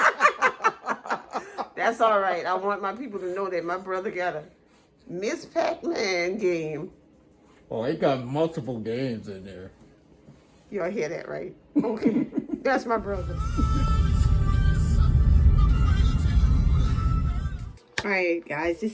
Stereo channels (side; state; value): both; identical; correlation 1.00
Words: That's all right. I want my people to know that my brother got a Miss Pac-Man game. Oh, it got multiple games in there. Y'all hear that, right? Okay. That's my brother. All right, guys.